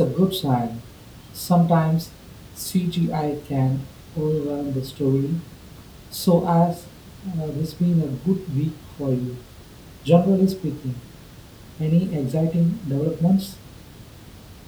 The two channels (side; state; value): both; identical; correlation 1.00